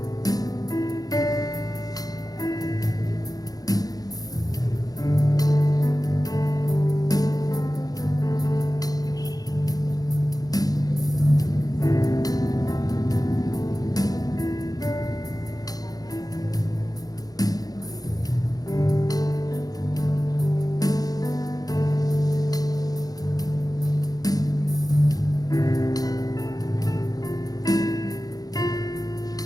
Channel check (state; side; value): late; right; 0.18 ms